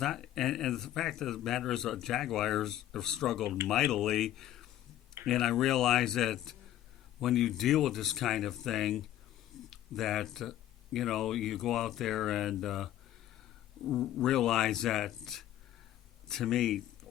not, and the fact of the matter is, the Jaguars have struggled mightily, and I realize that when you deal with this kind of thing, that you go out there and realize that. To me,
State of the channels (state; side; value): quieter; right; 12.7 dB